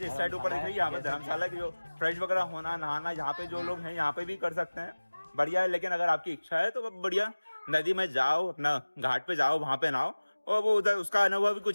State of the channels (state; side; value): inverted; both; correlation -1.00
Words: इस साइड ऊपर दिख रही है, यहाँ पे धर्मशाला की जो फ्रेश वगैरह होना नहाना यहाँ पे जो लोग हैं यहाँ पे भी कर सकते हैं, बढ़िया है। लेकिन अगर आपकी इच्छा है तो बढ़िया नदी में जाओ, अपना घाट पे जाओ, वहाँ पे नहाओ, और वो उधर उसका अनुभव भी